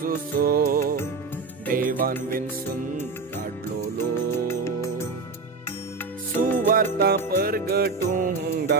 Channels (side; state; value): left; quieter; 4.2 dB